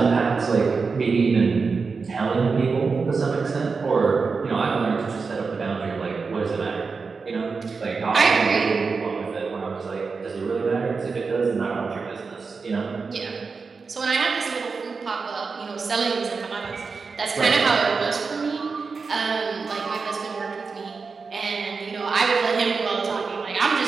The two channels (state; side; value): quieter; left; 4.8 dB